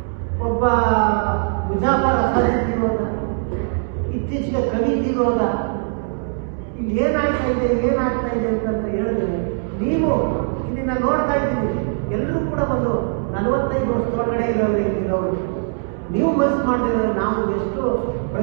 ಒಬ್ಬ ಮುಜಾಫರ್ ಅಸಾದ್ ತಿರೋದ, ಇತ್ತೀಚೆಗೆ ಕವಿ ತಿರೋದ. ಇಲ್ಲಿ ಏನಾಗ್ತಾ ಇದೆ ಅಂತ ಹೇಳಿದ್ರೆ, ನೀವು ಇದನ್ನ ನೋಡ್ತಾ ಇದ್ದೀವಿ. ಎಲ್ಲರೂ ಕೂಡ ಒಂದು 45 ವರ್ಷದೊಳಗಡೆ ಇರೋರು. ನೀವು ಮನಸ್ಸು ಮಾಡಿದ್ರೆ ನಾವು ಎಷ್ಟು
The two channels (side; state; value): left; silent; 61 dB below the other